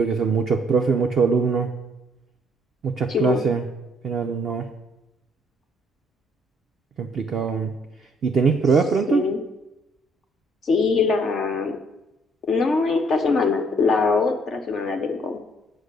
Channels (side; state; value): both; normal; correlation 0.65